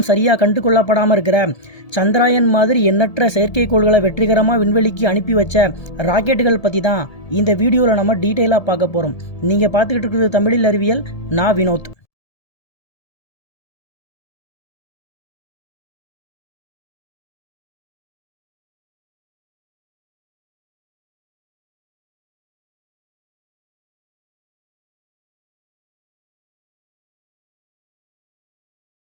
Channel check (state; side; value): late; right; 1.7 ms